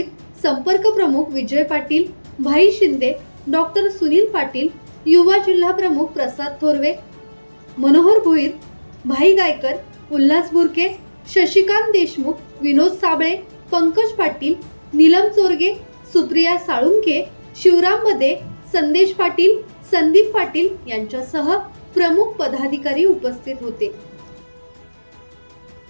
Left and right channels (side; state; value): both; inverted; correlation -1.00